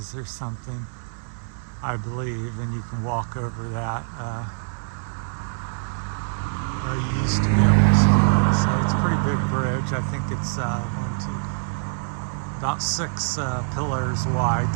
or something, I believe, and you can walk over that. Or you used to be able to. So it's a pretty big bridge. I think it's about 6 pillars wide.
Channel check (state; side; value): silent; left; 60 dB below the other